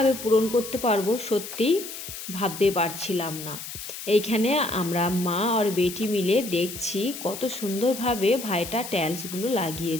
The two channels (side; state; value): left; noise; hiss, 10 dB below the sound